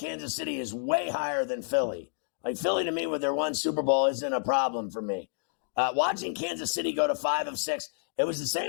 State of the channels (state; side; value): silent; right; digital silence